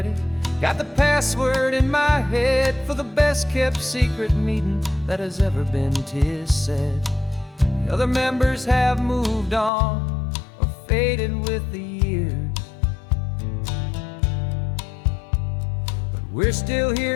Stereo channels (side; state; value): right; drops out; at 9.7 s